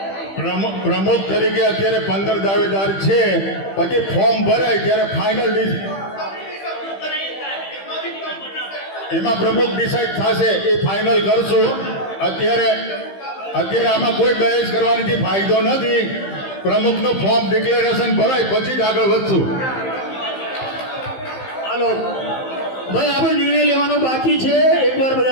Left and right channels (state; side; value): late; right; 15 ms